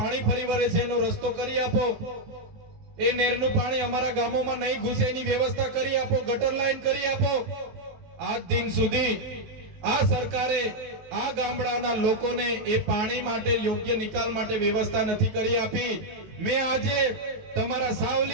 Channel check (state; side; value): late; left; 19 ms